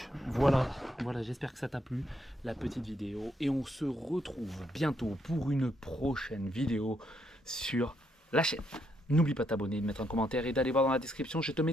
voilà, j'espère que ça t'a plu, la petite vidéo. Et on se retrouve bientôt pour une prochaine vidéo sur la chaîne. N'oublie pas de t'abonner, de mettre un commentaire et d'aller voir dans la description, je te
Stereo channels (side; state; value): both; normal; correlation 0.76